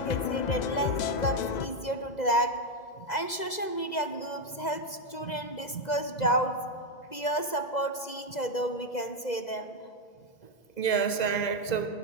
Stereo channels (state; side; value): late; right; 2.0 ms